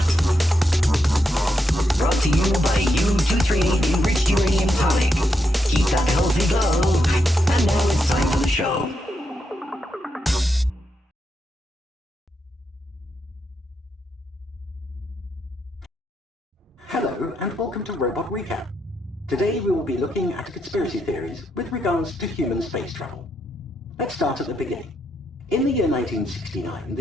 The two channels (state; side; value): normal; both; correlation 0.82